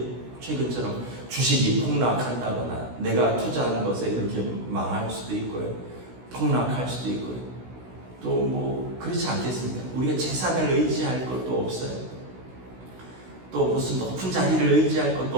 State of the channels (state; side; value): late; left; 16 ms